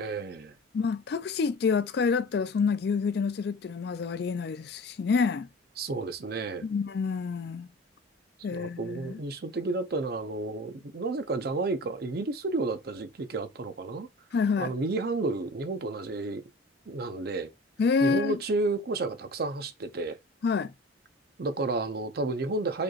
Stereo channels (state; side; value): normal; both; correlation 0.39